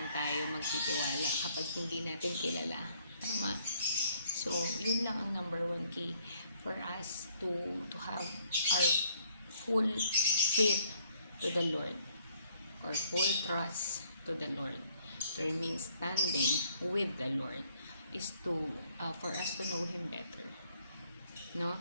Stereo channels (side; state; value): both; inverted; correlation -0.67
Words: tayo magtitiwala kapag hindi natin kilala. Tama? So yun lang ang number one key for us to have our full faith to the Lord, or full trust to the Lord, to remain standing with the Lord, is to for us to know Him better, no?